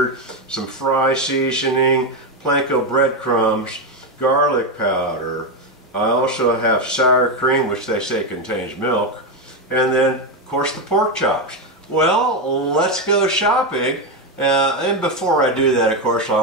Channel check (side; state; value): both; normal; correlation 0.08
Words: some fry seasoning, panko breadcrumbs, garlic powder. I also have sour cream, which they say contains milk, and then, of course, the pork chops. Well, let's go shopping. And before I do that, of course,